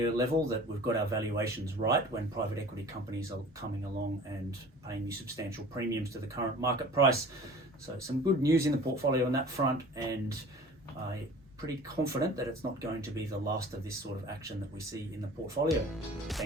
level that we've got our valuations right when private equity companies are coming along and paying you substantial premiums to the current market price. So some good news in the portfolio on that front, and I'm pretty confident that it's not going to be the last of this sort of action that we see in the portfolio.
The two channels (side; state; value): both; normal; correlation 0.44